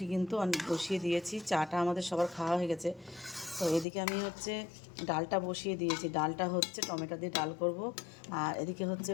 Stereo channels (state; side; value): drops out; right; at 3.9 s